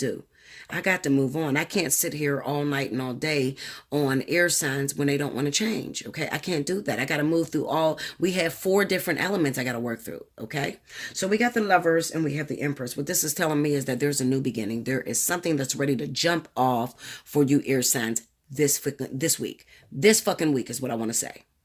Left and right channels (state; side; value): identical; both; correlation 1.00